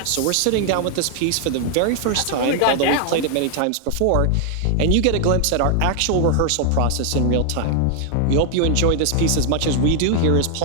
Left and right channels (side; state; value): both; different; correlation 0.00